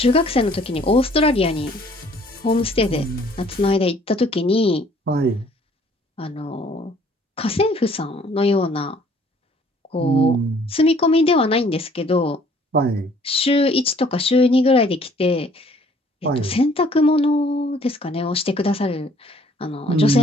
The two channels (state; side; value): normal; both; correlation 0.58